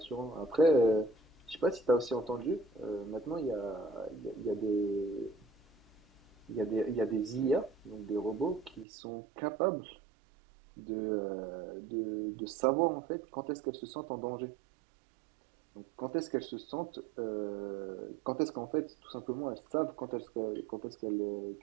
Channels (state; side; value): drops out; left; at 8.8 s